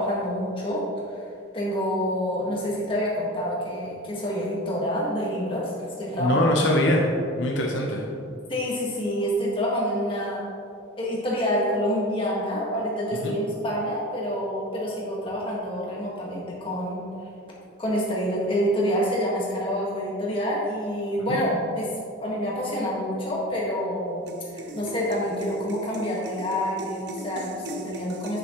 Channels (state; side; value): normal; both; correlation 0.33